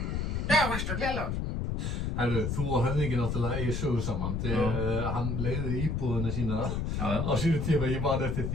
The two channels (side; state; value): left; noise; rumble, 1 dB below the sound